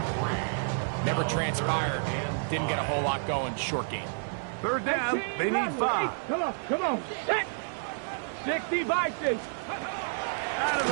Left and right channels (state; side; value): silent; left; digital silence